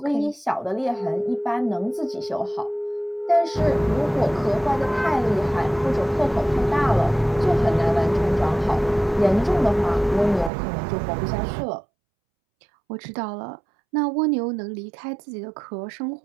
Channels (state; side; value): drops out; left; at 10.5 s